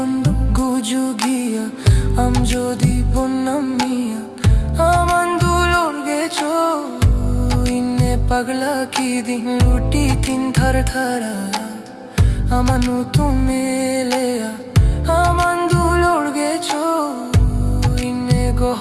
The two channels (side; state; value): both; identical; correlation 1.00